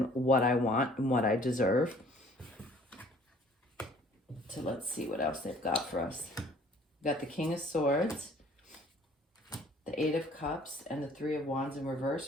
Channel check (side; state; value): both; normal; correlation 0.55